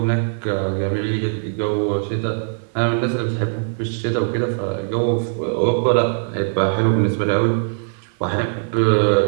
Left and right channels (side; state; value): left; silent; 55 dB below the other